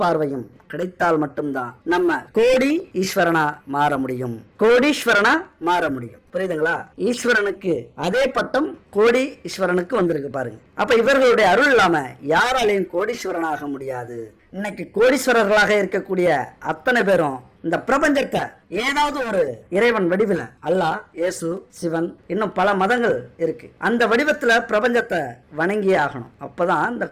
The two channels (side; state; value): both; identical; correlation 1.00